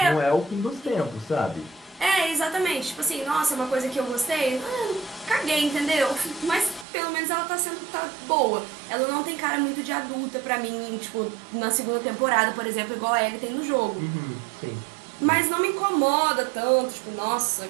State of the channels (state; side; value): drops out; left; at 6.9 s